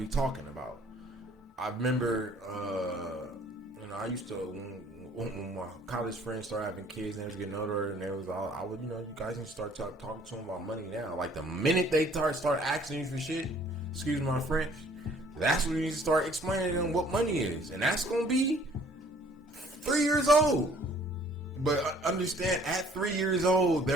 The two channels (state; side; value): normal; both; correlation 0.57